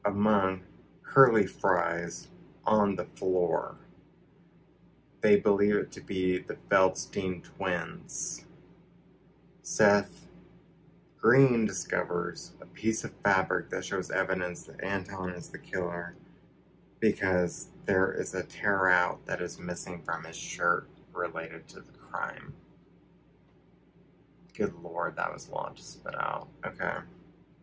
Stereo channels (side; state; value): both; identical; correlation 1.00